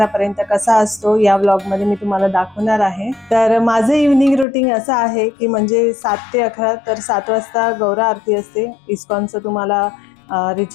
पर्यंत कसा असतो, या व्लॉग मध्ये मी तुम्हाला दाखवणार आहे। तर माझं इव्हनिंग रुटीन असं आहे की म्हणजे 7 ते 11, तर 7 वाजता गौरा आरती असते इस्कॉनचं, तुम्हाला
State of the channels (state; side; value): drops out; right; at 4.5 s